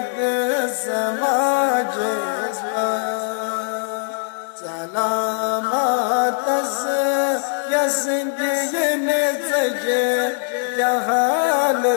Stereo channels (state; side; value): silent; right; digital silence